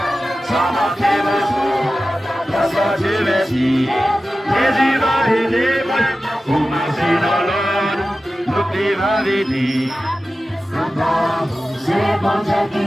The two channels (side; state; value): both; normal; correlation 0.94